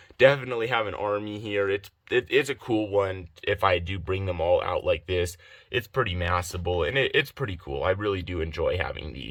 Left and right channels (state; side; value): identical; both; correlation 1.00